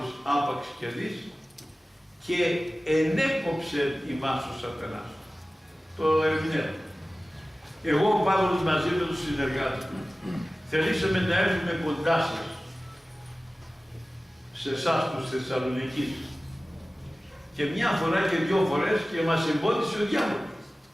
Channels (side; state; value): both; normal; correlation 0.97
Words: άπαξ και δεις, και ενέκοψε ημάς ο σατανάς. Το ερμηνεύω. Εγώ ο Παύλος μαζί με τους συνεργάτες μου θελήσαμε να έρθουμε κοντά σας, σε εσάς τους Θεσσαλονικείς. Και μια φορά και 2 φορές και μας εμπόδισε ο διάβολος.